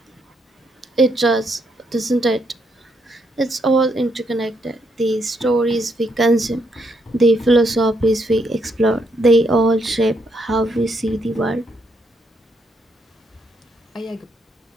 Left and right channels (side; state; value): both; normal; correlation 0.76